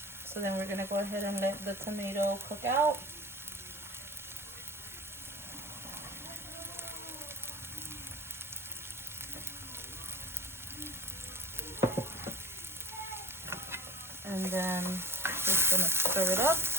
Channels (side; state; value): both; normal; correlation 0.39